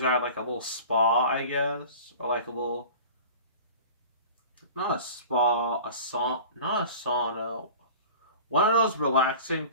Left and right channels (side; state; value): both; inverted; correlation -0.39